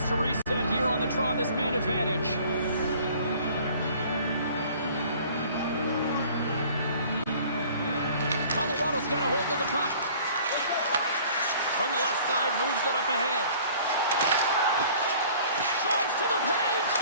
to reset here on the draw, this man advantage. Colorado's got a hold of the puck. From the left side, moves it up ahead. Drives to the paint.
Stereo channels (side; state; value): both; inverted; correlation -0.51